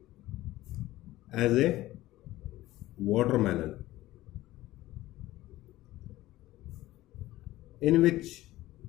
as a watermelon, in which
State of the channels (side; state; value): right; quieter; 16.5 dB